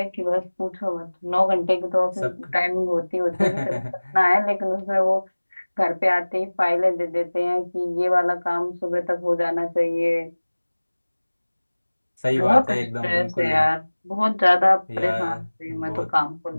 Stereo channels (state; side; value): inverted; both; correlation -1.00